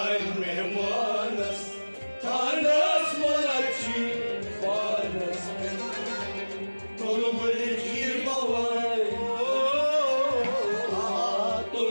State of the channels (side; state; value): both; inverted; correlation -1.00